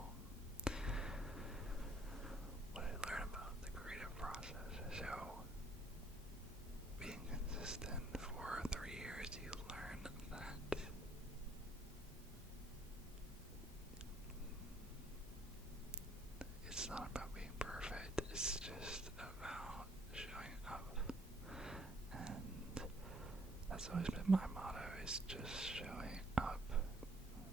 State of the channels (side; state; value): both; normal; correlation 0.64